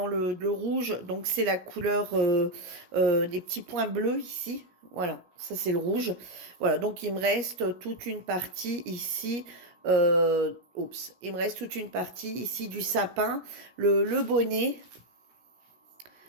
le rouge, donc c'est la couleur des petits points bleus ici. Voilà, ça c'est le rouge. Voilà, donc il me reste toute une partie ici. Oups, il me reste toute une partie ici du sapin, le bonnet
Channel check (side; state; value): left; late; 17 ms